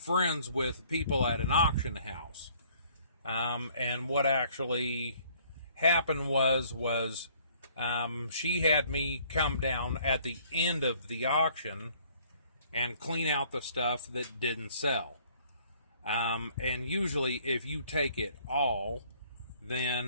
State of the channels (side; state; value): both; inverted; correlation -0.59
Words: with people at an auction house. And what actually happened was she had me come down at the end of the auction and clean out the stuff that didn't sell. And usually if you take it all,